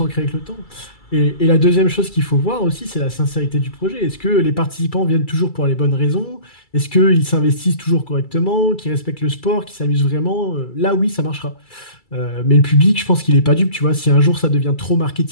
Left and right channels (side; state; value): right; late; 2.3 ms